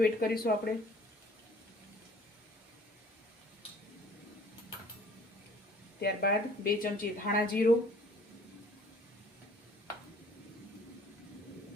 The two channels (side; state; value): both; normal; correlation 0.53